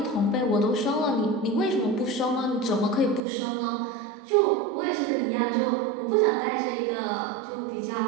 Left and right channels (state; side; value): drops out; left; at 3.2 s